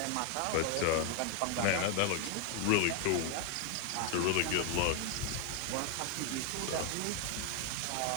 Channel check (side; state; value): both; different; correlation 0.00